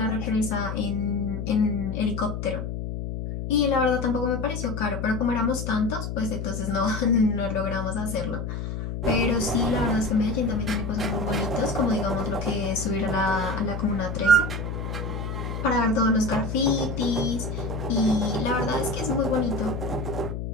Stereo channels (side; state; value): left; noise; hum, 5 dB below the sound